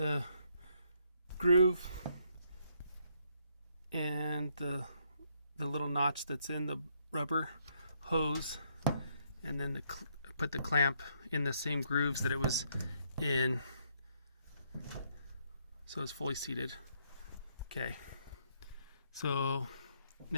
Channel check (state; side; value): inverted; both; correlation -0.72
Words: groove and the little notch that's in the rubber hose, and then put the clamp in the same grooves that it was in, so it's fully seated. Okay, so